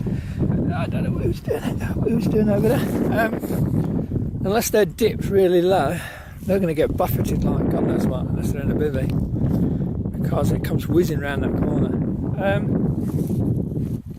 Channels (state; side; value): identical; both; correlation 1.00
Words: I don't know what he was doing over there. Unless they're dipped really low, they're going to get buffeted like God knows what, unless they're in a bivvy. Because it comes whizzing round that corner.